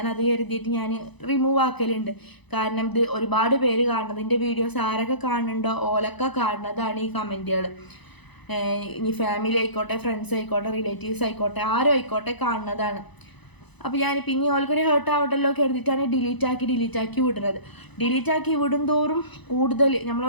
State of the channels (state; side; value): late; right; 1.0 ms